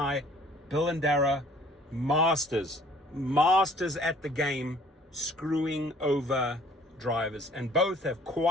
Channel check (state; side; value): normal; both; correlation 0.55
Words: Dara, masters at the game, screwing over drivers, and both have